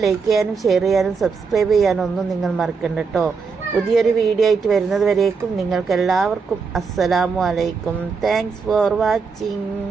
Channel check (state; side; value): quieter; left; 5.1 dB